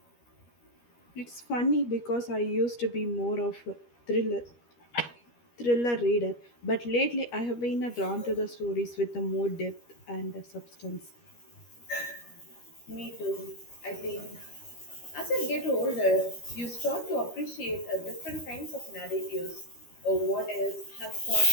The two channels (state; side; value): late; right; 13 ms